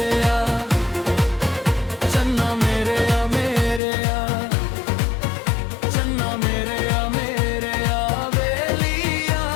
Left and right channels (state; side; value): drops out; right; at 3.8 s